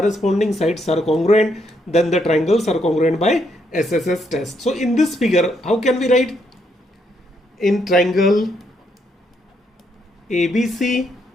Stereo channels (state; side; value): normal; both; correlation 0.75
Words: sides are congruent, then the triangles are congruent by SSS test. So in this figure, how can we write? In triangle ABC